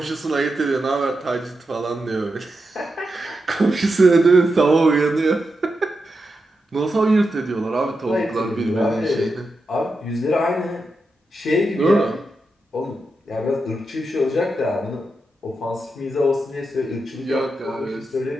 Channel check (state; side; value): normal; both; correlation 0.87